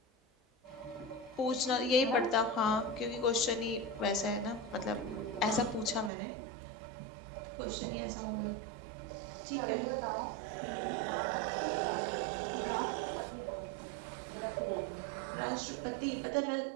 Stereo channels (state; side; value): drops out; left; at 6.1 s